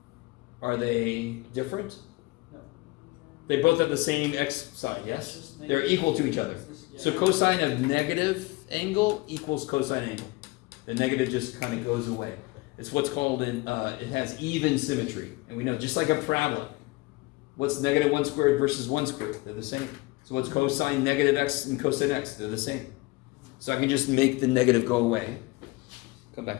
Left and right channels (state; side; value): quieter; right; 23.0 dB